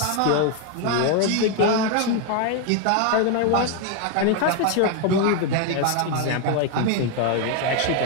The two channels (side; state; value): both; different; correlation 0.01